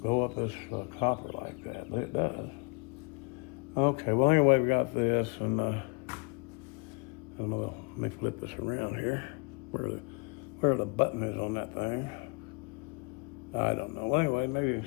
go up this copper like that, but it does. Okay, well anyway, we got this, and I don't know, let me flip this around here. Where the button is on that thing. I don't know. Well, anyway, maybe you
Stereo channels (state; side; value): quieter; right; 31.7 dB